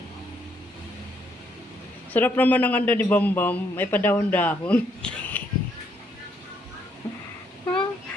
Sarap naman ang ando ni Bam Bam. May padahon-dahon.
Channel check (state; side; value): normal; both; correlation 0.72